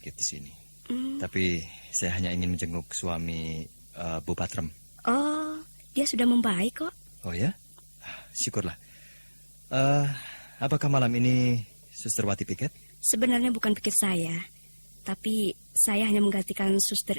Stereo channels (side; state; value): both; inverted; correlation -1.00